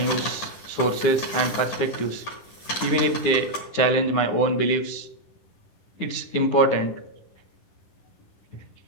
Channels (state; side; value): late; right; 9.7 ms